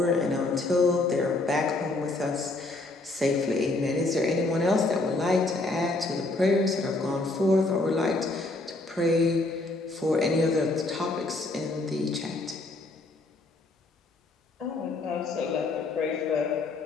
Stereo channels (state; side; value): quieter; right; 3.1 dB